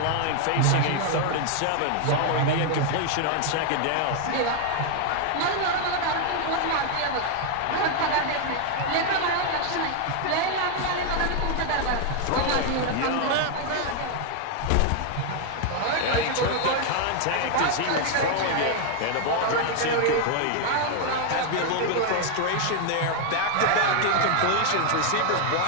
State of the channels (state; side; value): different; both; correlation 0.00